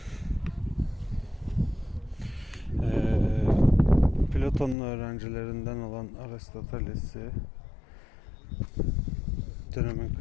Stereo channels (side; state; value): right; drops out; at 4.8 s